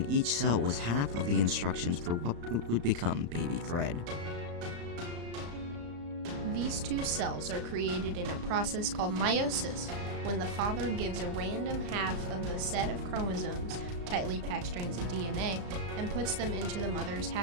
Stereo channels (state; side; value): late; left; 35 ms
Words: each cell was half of the instructions for what would become baby Fred. These two cells are created in a process called meiosis, when the father gives a random half of the set of chromosomes, tightly packed strands of DNA, and puts them into the mother's